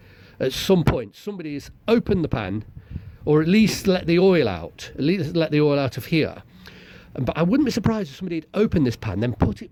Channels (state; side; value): identical; both; correlation 1.00